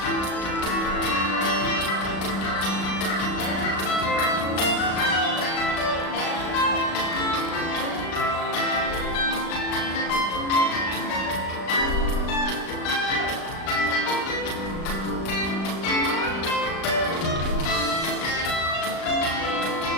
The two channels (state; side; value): late; right; 36 ms